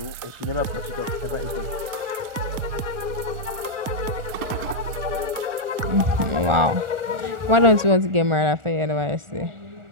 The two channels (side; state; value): left; late; 2.0 ms